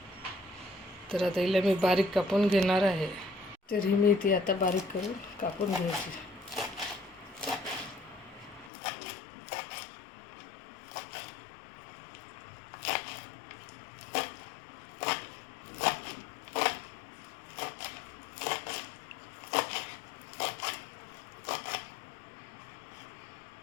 तर आता हिला मी बारीक कापून घेणार आहे. तर ही मेथी आता बारीक करून कापून घ्यायची.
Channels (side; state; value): right; drops out; at 8.7 s